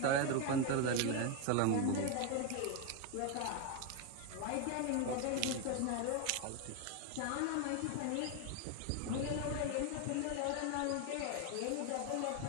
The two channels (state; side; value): different; both; correlation 0.01